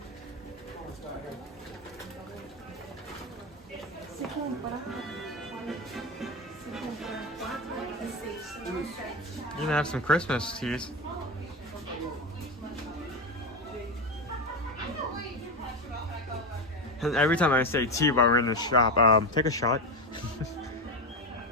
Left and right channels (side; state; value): both; normal; correlation 0.17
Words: You can have some Christmas teas. And every time I say tea while we're in the shop, take a shot.